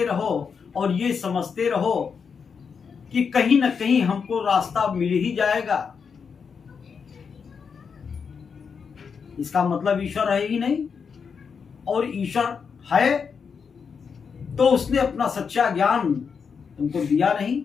रहो और ये समझते रहो कि कहीं ना कहीं हमको रास्ता मिल ही जाएगा। इसका मतलब ईश्वर है ही नहीं। और ईश्वर है तो उसने अपना सच्चा ज्ञान तुमको दिया नहीं?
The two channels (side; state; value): right; quieter; 6.1 dB